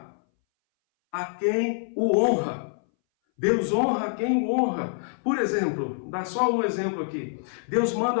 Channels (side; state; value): right; silent; 60 dB below the other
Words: a quem o honra. Deus honra quem o honra. Por exemplo, dá só um exemplo aqui. Deus